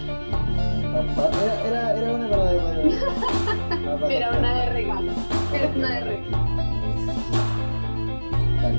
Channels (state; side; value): inverted; both; correlation -1.00